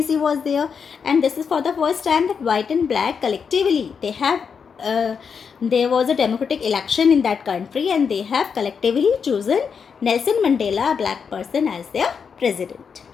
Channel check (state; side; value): quieter; right; 6.3 dB